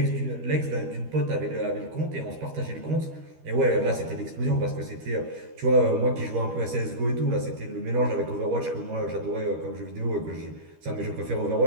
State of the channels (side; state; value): left; late; 13 ms